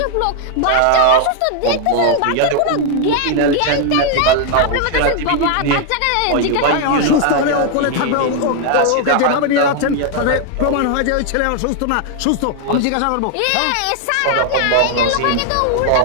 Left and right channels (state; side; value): different; both; correlation 0.00